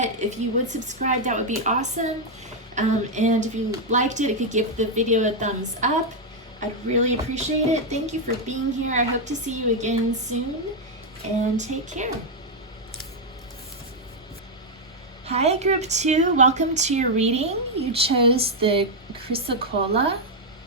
if you would subscribe, that would be awesome. And if you liked it, if you give the video a thumbs up, I'd really appreciate it. Thank you for being here. I hope to see you again soon, and take care. Hi, Group 2. Welcome to your reading. You chose the chrysocolla,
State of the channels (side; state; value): both; normal; correlation 0.00